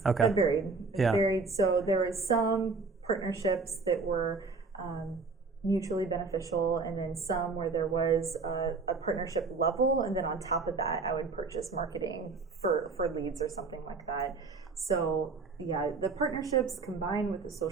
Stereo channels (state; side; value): quieter; left; 4.2 dB